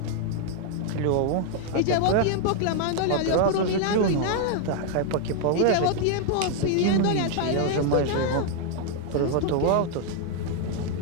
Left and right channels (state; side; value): different; both; correlation 0.00